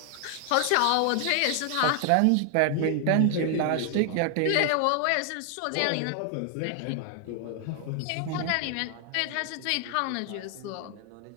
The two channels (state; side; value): different; both; correlation 0.00